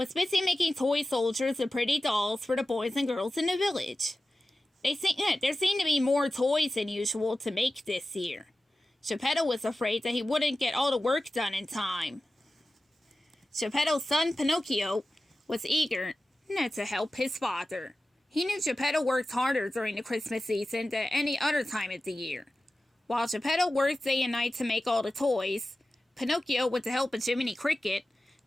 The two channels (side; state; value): both; normal; correlation 0.95